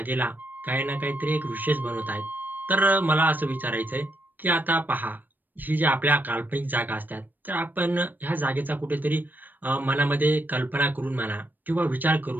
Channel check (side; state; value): left; late; 0.089 ms